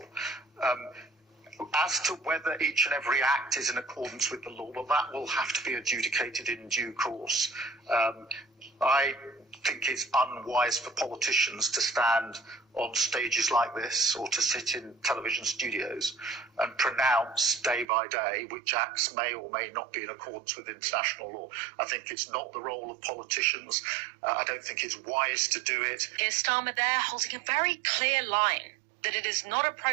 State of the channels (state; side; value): drops out; left; at 17.9 s